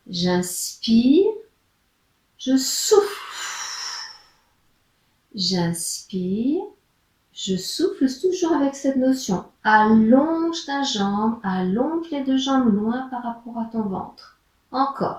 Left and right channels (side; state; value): both; identical; correlation 1.00